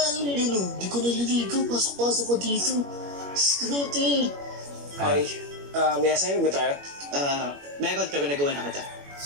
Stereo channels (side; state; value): left; late; 21 ms